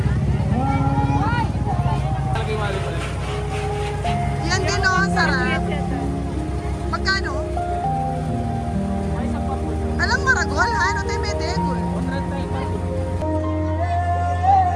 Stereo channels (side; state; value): both; identical; correlation 1.00